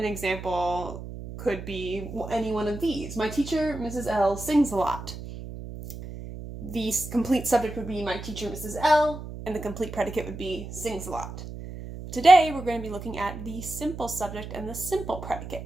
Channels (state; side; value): noise; right; hum, 10 dB below the sound